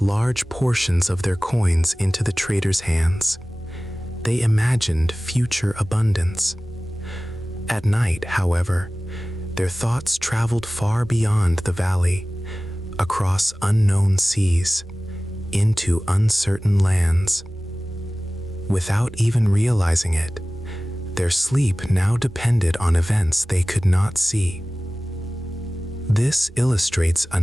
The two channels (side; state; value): both; normal; correlation 0.97